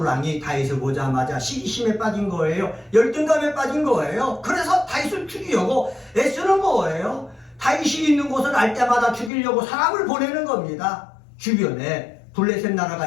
다윗을 보자마자 시기심에 빠진 거예요. 열등감에 빠진 거예요. 그래서 다윗을 죽이려고 애쓰는 거예요. 다윗이 있는 곳을 알 때마다 죽이려고 사람을 보내는 겁니다. 주변에 블레셋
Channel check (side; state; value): right; drops out; at 9.3 s